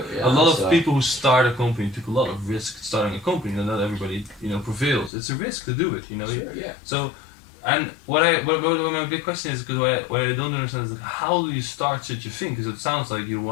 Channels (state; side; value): drops out; right; at 5.1 s